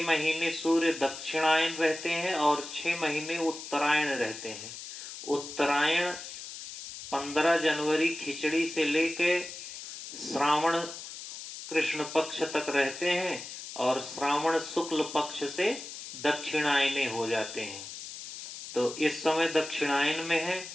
महीने सूर्य दक्षिणायन रहते हैं और 6 महीने उत्तरायण रहते हैं। उत्तरायण 15 जनवरी खिचड़ी से लेके श्रावण कृष्ण पक्ष तक रहते हैं और श्रावण शुक्ल पक्ष से दक्षिणायने हो जाते हैं। तो इस समय दक्षिणायन में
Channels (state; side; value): noise; left; hiss, 11 dB below the sound